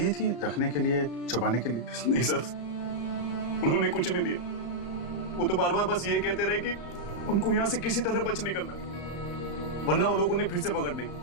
थी रखने के लिए, छुपाने के लिए? नहीं सर, उन्होंने कुछ नहीं दिया। वो तो बार बार बस ये कहते रहे कि उनको यहाँ से किसी तरह बच निकलना है, वरना वो लोग उन्हें फिर से पकड़ लेंगे।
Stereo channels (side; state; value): right; late; 34 ms